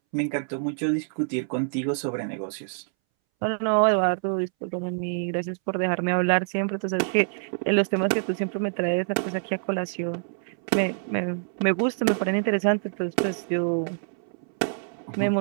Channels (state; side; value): silent; left; 61 dB below the other